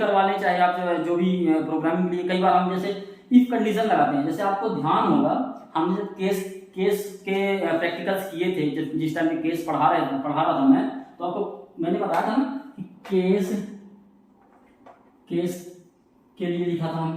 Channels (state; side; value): identical; both; correlation 1.00